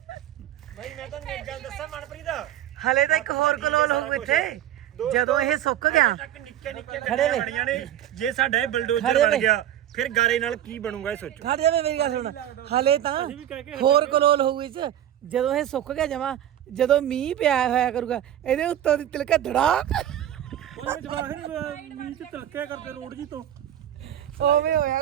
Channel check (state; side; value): quieter; left; 11.5 dB